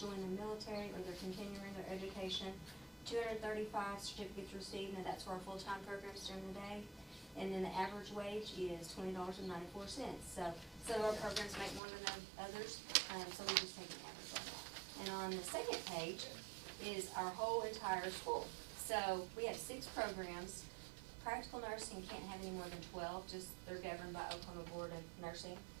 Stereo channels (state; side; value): drops out; left; at 11.8 s